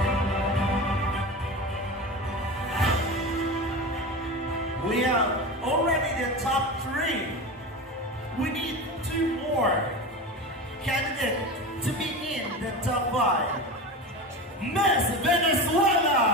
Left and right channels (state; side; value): normal; both; correlation 0.26